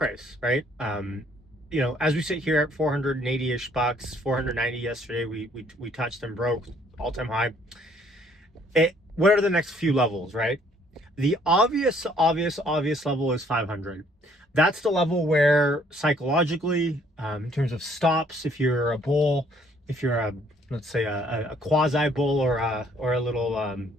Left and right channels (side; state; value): both; normal; correlation 0.63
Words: right? As we sit here at 480-ish bucks, 490 yesterday, we touched and broke all-time high. What are the next few levels, right? The obvious level is 500. That's the level where psychologically, in terms of stops, if you're a bull, if you're a, let's say a quasi bull or a